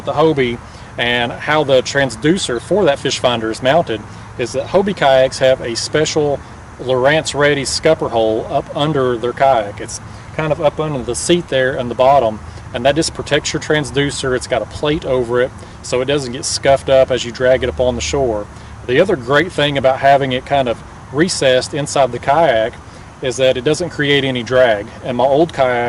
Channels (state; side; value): identical; both; correlation 1.00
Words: the Hobie and how the transducer for that fish finder is mounted is that Hobie kayaks have a special Lowrance ready scupper hole up under their kayak. It's kind of up under the seat there in the bottom, and that just protects your transducer. It's got a plate over it so it doesn't get scuffed up as you drag it up on the shore. The other great thing about having it kind of recessed inside the kayak is that it doesn't create any drag. In my old